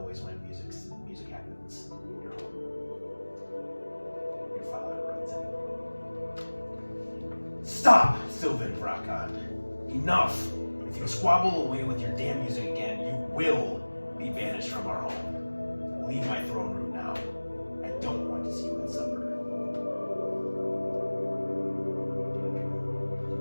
when music happens in your home, your father runs in. Stop, Sylvin Brakan. Enough! If you squabble away with your damn music again, you will be banished from our home. Leave my throne room now. I don't want to see you at supper.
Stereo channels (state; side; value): inverted; both; correlation -1.00